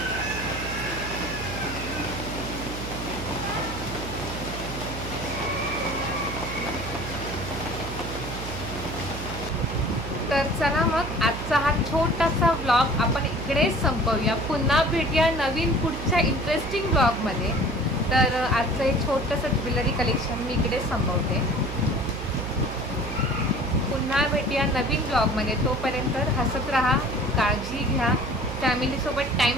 तर चला मग आजचा हा छोटासा व्लॉग आपण इकडेच संपवूया. पुन्हा भेटूया नवीन पुढच्या इंटरेस्टिंग व्लॉगमध्ये. तर आजचं एक छोटंसं ज्वेलरी कलेक्शन मी इकडेच संपवते. पुन्हा भेटूया नवीन ब्लॉगमध्ये. तोपर्यंत हसत राहा, काळजी घ्या, फॅमिलीसोबत टाईम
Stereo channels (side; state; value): right; noise; hum, 8 dB below the sound